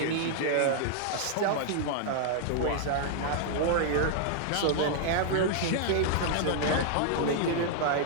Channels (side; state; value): both; different; correlation -0.01